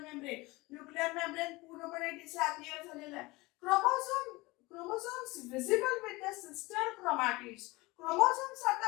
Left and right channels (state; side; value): quieter; right; 22.3 dB